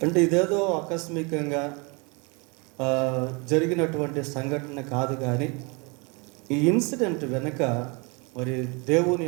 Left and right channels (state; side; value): quieter; left; 30.0 dB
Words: అంటే ఇదేదో ఆకస్మికంగా జరిగినటువంటి సంఘటన కాదు, కానీ ఈ ఇన్సిడెంట్ వెనుక మరి దేవుని